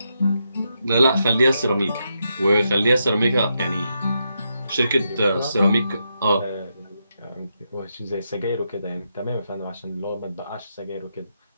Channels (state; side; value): inverted; both; correlation -0.83